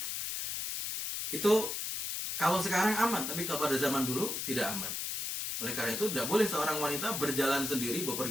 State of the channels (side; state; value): left; noise; hiss, 3 dB below the sound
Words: Itu kalau sekarang aman, tapi kalau pada zaman dulu tidak aman. Oleh karena itu tidak boleh seorang wanita berjalan sendiri,